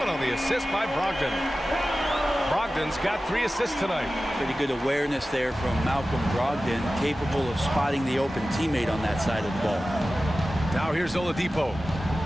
on the assist by Brogdon. Brogdon's got 3 assists tonight. Pretty good awareness there from Malcolm Brogdon, capable of spotting the open teammate on that side of the ball. Now here's Oladipo.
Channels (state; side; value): normal; both; correlation 0.95